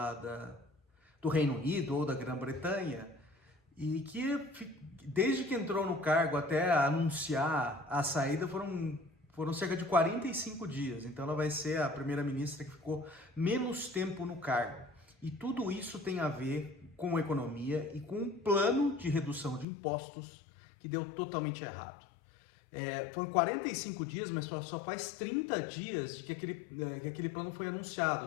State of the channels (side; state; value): right; drops out; at 19.7 s